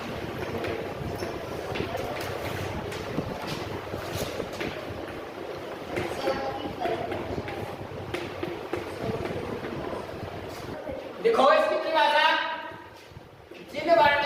देखो इसकी परिभाषा, जिन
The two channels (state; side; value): identical; both; correlation 1.00